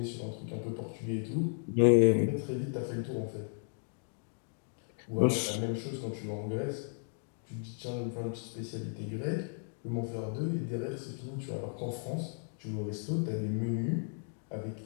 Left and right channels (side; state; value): right; silent; 55 dB below the other